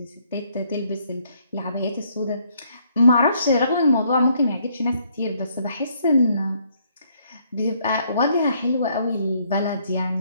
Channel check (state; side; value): inverted; both; correlation -0.68